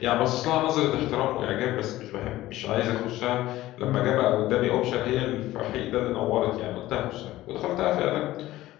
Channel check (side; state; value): right; quieter; 16.0 dB